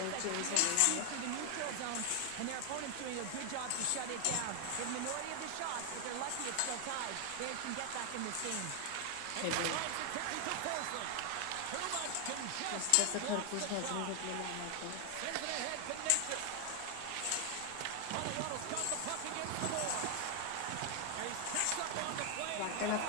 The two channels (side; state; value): both; different; correlation 0.00